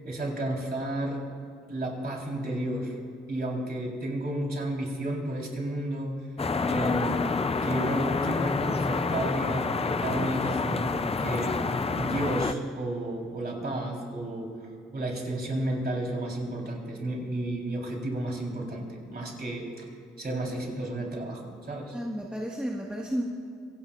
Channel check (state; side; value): normal; both; correlation 0.65